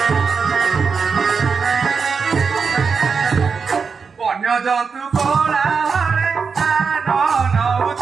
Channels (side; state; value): left; quieter; 5.5 dB